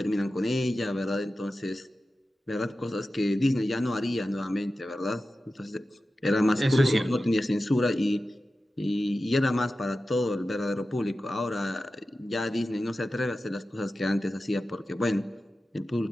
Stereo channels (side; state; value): both; normal; correlation 0.93